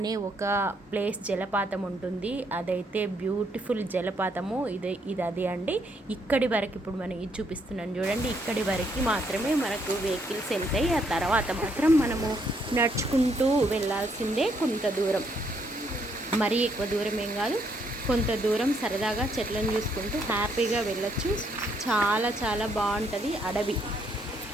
ఒక ప్లేస్ జలపాతం ఉంటుంది. అదైతే బ్యూటిఫుల్ జలపాతము. ఇది అది అండి. ఇక్కడి వరకు ఇప్పుడు మనం ఇది చూపిస్తున్నాను చూడండి. ఇక్కడి వరకు మాత్రమే మనకు వెహికల్స్ వెళ్తాయి. ఆ తర్వాత మాత్రం మనము నడుచుకుంటూ వెళ్ళాల్సిందే. కొంత దూరం, మరీ ఎక్కువ దూరం ఏం కాదు, కొంత దూరం సరదాగా చెట్లను చూసుకుంటూ హ్యాపీగా వెళ్ళొచ్చు. చాలా చాలా బాగుంటుంది. అడవి,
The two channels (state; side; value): normal; both; correlation 0.72